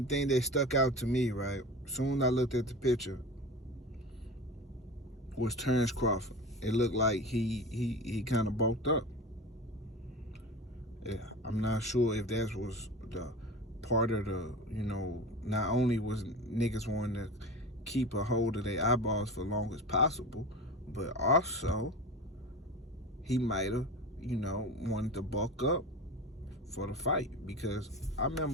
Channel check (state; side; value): normal; both; correlation 0.31